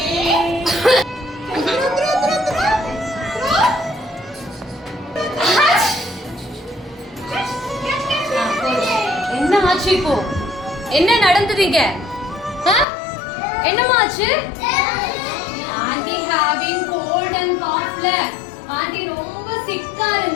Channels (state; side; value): drops out; right; at 12.9 s